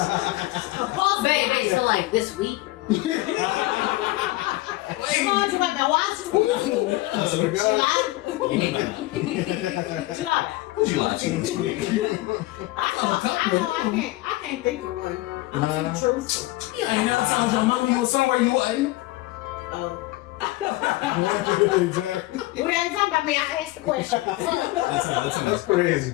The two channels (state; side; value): quieter; right; 19.3 dB